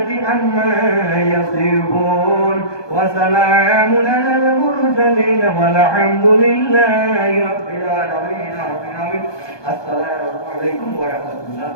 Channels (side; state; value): right; late; 1.2 ms